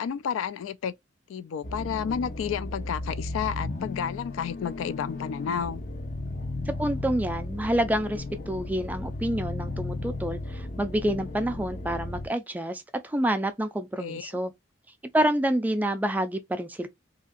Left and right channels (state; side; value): normal; both; correlation 0.66